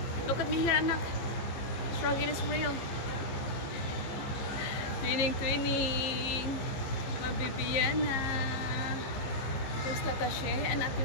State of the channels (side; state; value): right; late; 15 ms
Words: look at me here, anak. Struggle is real. Twinning, twinning. Mabibiana. There's Tata Shay and Ate